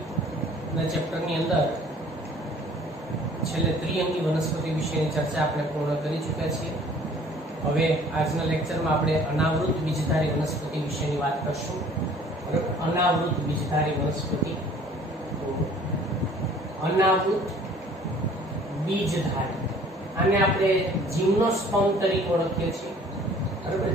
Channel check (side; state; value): both; normal; correlation 0.53